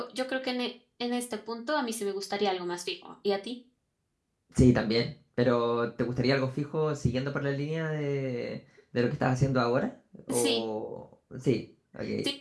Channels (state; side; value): identical; both; correlation 1.00